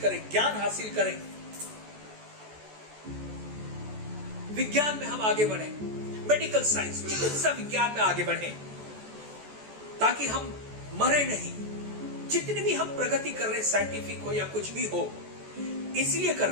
ज्ञान हासिल करें, विज्ञान में हम आगे बढ़ें, मेडिकल साइंस, चिकित्सा विज्ञान में आगे बढ़ें, ताकि हम मरे नहीं। जितनी भी हम प्रगति कर रहे, साइंटिफिक हो या कुछ भी हो, इसलिए कर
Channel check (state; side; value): late; left; 14 ms